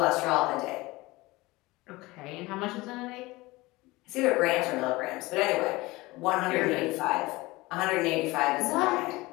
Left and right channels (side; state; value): right; quieter; 21.2 dB